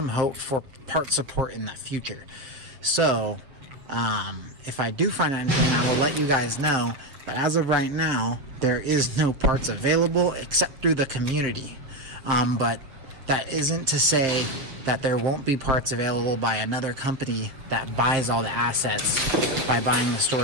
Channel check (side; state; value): left; late; 7.5 ms